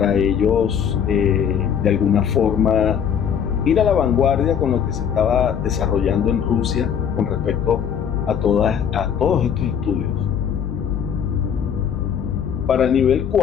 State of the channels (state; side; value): quieter; right; 8.1 dB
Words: ellos de alguna forma ir a la vanguardia con lo que se estaba desarrollando en Rusia con respecto a todos estos estudios. Para el nivel